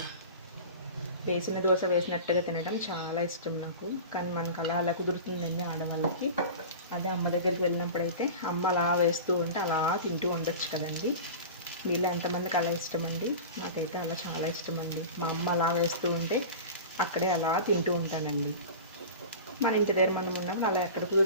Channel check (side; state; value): both; inverted; correlation -0.33